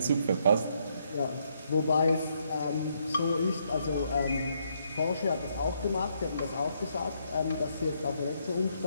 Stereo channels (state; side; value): inverted; both; correlation -0.74